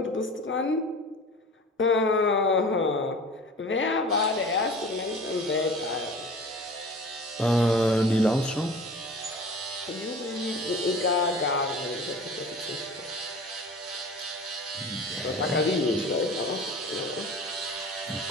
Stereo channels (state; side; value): normal; both; correlation 0.40